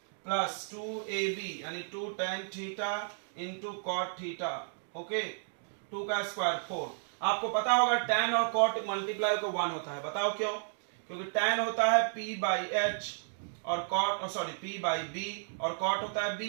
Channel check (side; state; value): left; silent; digital silence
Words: प्लस 2ab यानी 2 tan theta into cot theta. Okay, 2 का स्क्वायर 4। आपको पता होगा tan और cot मल्टीप्लाई को 1 होता है, बताओ क्यों? क्योंकि tan होता है p बाई h और cot sorry p by b और cot होता है